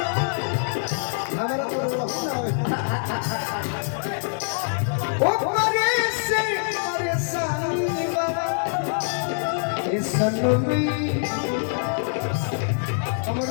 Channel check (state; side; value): silent; right; digital silence